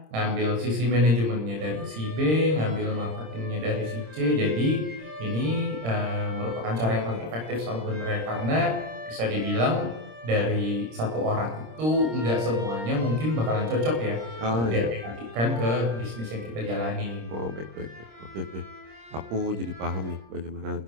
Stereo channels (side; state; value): left; late; 26 ms